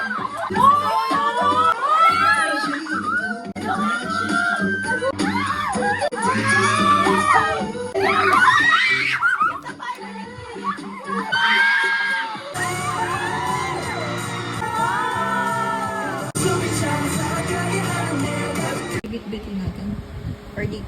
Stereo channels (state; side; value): identical; both; correlation 1.00